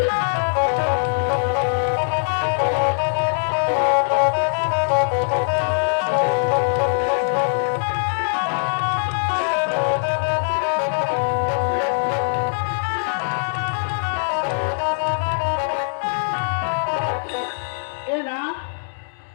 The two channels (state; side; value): silent; right; digital silence